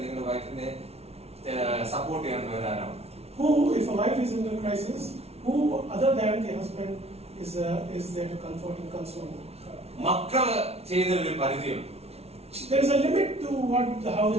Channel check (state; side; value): late; left; 0.30 ms